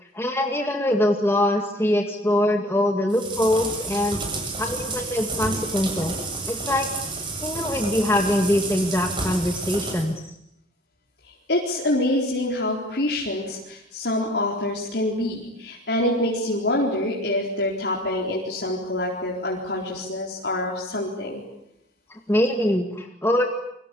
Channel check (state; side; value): normal; both; correlation 0.50